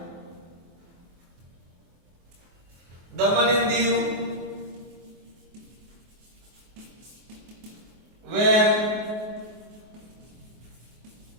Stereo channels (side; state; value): left; late; 24 ms